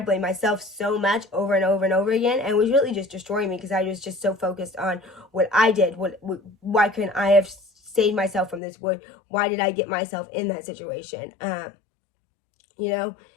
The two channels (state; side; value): drops out; right; at 8.6 s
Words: blame myself so much over and over and over again, and it was really just destroying me because I was just so focused on what I did. Why couldn't I have saved myself from this? Why did I get myself in that situation? I